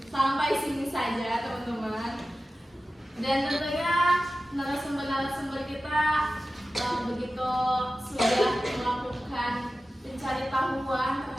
Sampai sini saja teman-teman. Dan tentunya narasumber kita begitu sudah melakukan mencari tahuan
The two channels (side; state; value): both; normal; correlation 0.95